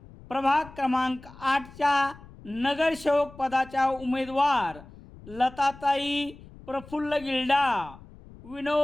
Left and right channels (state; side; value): noise; left; rumble, 20 dB below the sound